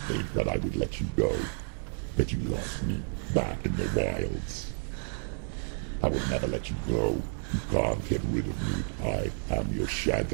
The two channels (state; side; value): silent; left; digital silence